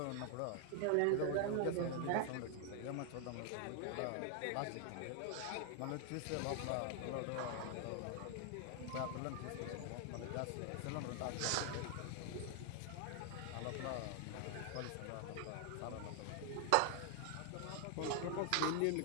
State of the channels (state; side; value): different; both; correlation 0.00